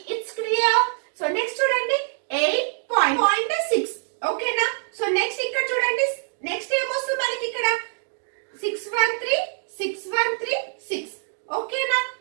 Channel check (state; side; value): silent; left; digital silence